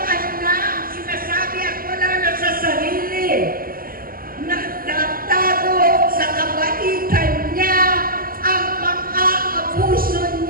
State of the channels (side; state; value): left; late; 0.42 ms